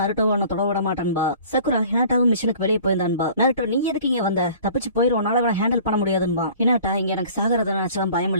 ஒன்னு தொட விட மாட்டான்பா. சக்குரா ஹினாட்டாவும் மிஷனுக்கு வெளியே போயிருந்தான்பா. நருட்டோ நீ எதுக்கு இங்க வந்த, தப்பிச்சு போயிரும், உன்னால ஹேண்டில் பண்ண முடியாதுன்பா. ஹினாட்டா இங்க எனக்கு சாகரத நினைச்சாலும் பயம்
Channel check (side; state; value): both; inverted; correlation -0.48